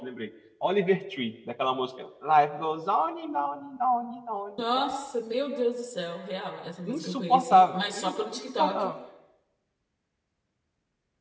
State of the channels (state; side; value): identical; both; correlation 1.00